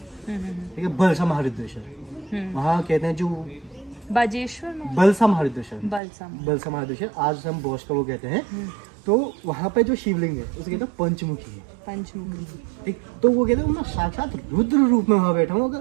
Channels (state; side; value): drops out; left; at 6.0 s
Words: ठीक है, बलसा महारुद्रेश्वर। वहाँ कहते हैं जो बाजेश्वर बलसा महारुद्रेश्वर, बलसा महारुद्रेश्वर आज हम बोस का वो कहते हैं। तो वहाँ पे जो शिवलिंग है उसे कहते हैं पंचमुखी है, ठीक। तो वो कहते हैं मैं साक्षात रुद्र रूप में वहाँ बैठा हूँ,